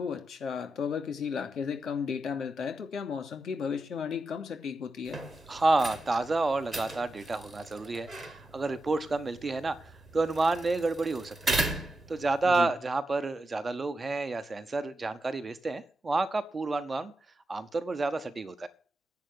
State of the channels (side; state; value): both; normal; correlation 0.88